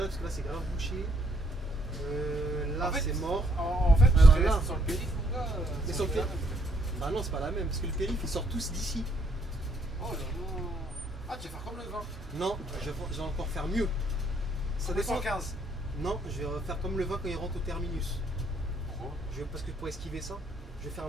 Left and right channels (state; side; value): normal; both; correlation 0.70